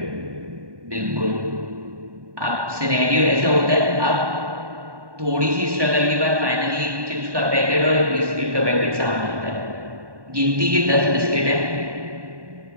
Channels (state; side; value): late; left; 1.2 ms